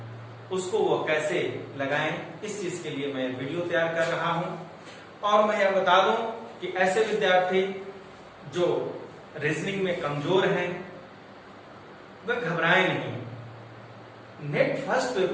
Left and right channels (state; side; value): identical; both; correlation 1.00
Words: उसको वो कैसे लगाएं, इस चीज के लिए मैं वीडियो तैयार कर रहा हूं। और मैं यह बता दूं कि ऐसे विद्यार्थी जो रीजनिंग में कमजोर हैं वह घबराएं नहीं। नेट फर्स्ट